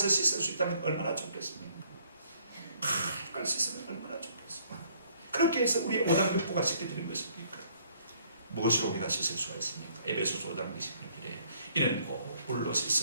씻을 수 있다면 얼마나 좋겠습니까? 칼 씻으면 얼마나 좋겠습니까? 그렇게 해서 우리의 오장육부가 씻겨지는 것입니까? 무엇으로 우리가 씻을 수가 있습니까? 에베소서 5장 26절에 이는 곧 물로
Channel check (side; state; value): both; inverted; correlation -0.63